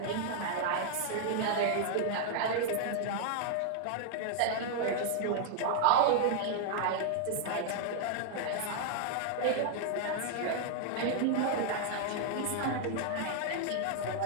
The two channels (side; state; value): both; different; correlation -0.01